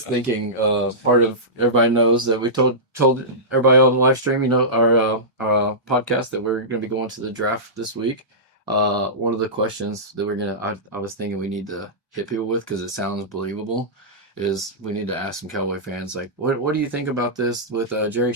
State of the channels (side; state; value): both; normal; correlation -0.17